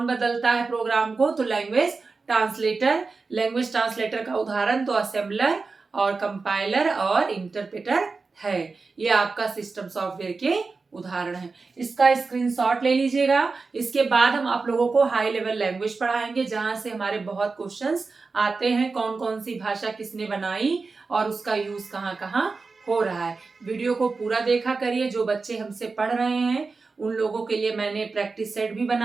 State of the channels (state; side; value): quieter; left; 4.2 dB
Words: बदलता है प्रोग्राम को तो लैंग्वेज ट्रांसलेटर। लैंग्वेज ट्रांसलेटर का उदाहरण तो असेंबलर और कंपाइलर और इंटरप्रेटर है। ये आपका सिस्टम सॉफ्टवेयर के उदाहरण है। इसका स्क्रीनशॉट ले लीजिएगा। इसके बाद हम आप लोगों को हाई लेवल लैंग्वेज पढ़ाएंगे, जहां से हमारे बहुत क्वेश्चंस आते हैं, कौन कौन सी भाषा किसने बनाई और उसका यूज कहाँ कहाँ हो रहा है। वीडियो को पूरा देखा करिए। जो बच्चे हमसे पढ़ रहे हैं उन लोगों के लिए मैंने प्रैक्टिस सेट भी